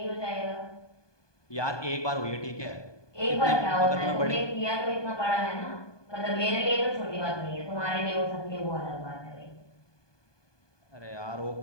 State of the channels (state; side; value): late; right; 1.2 ms